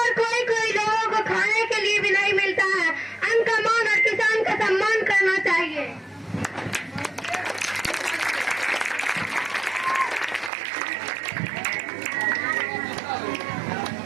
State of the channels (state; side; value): drops out; left; at 10.5 s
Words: और कोई लोगों को खाने के लिए भी नहीं मिलता है। अन्न का मान और किसान का